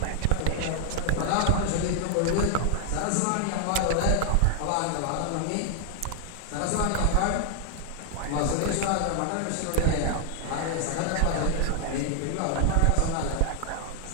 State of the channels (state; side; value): different; both; correlation 0.00